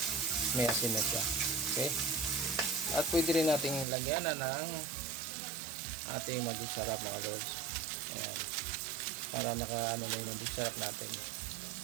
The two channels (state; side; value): drops out; left; at 3.9 s